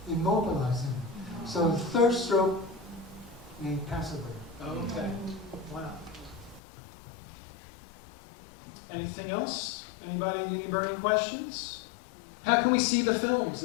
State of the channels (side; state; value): right; drops out; at 6.6 s